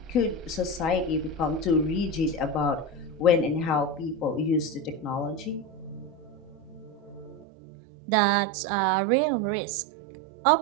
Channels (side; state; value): left; drops out; at 7.5 s